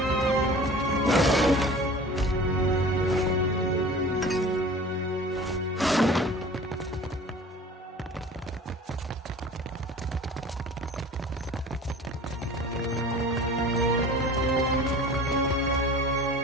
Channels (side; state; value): both; normal; correlation 0.42